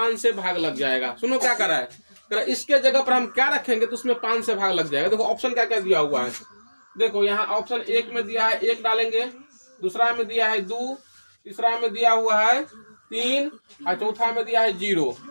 से भाग लग जाएगा। सुनो क्या कर रहा है, इसके जगह पर हम क्या रखेंगे तो उसमें 5 से भाग लग जाएगा। देखो ऑप्शन क्या क्या दिया हुआ है। देखो यहाँ ऑप्शन 1 में दिया है 1 डालेंगे, दूसरा में दिया है 2, तीसरा में दिया हुआ है 3 और चौथा में दिया है 0।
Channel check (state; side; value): inverted; both; correlation -1.00